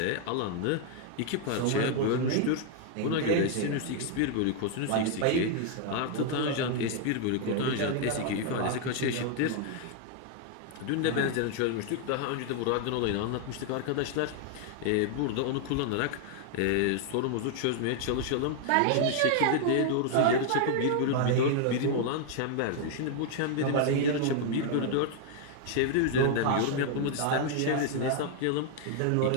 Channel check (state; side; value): different; both; correlation 0.00